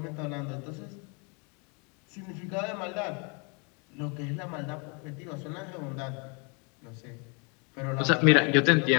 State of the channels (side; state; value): right; quieter; 33.9 dB